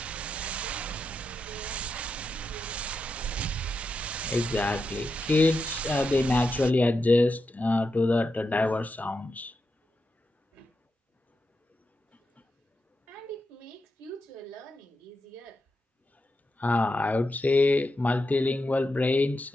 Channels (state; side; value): normal; both; correlation 0.87